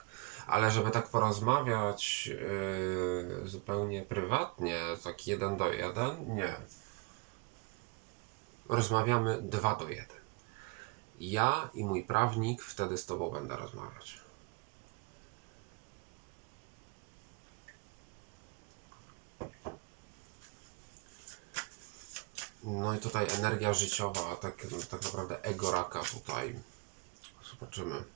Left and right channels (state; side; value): quieter; left; 27.4 dB